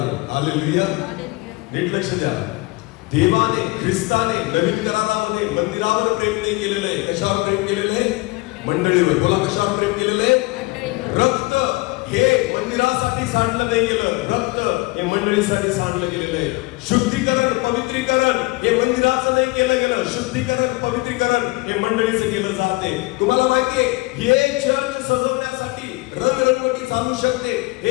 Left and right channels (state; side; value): quieter; right; 23.6 dB